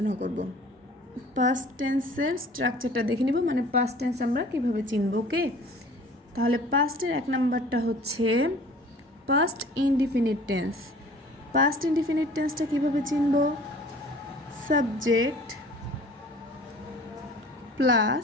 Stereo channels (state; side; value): normal; both; correlation 0.48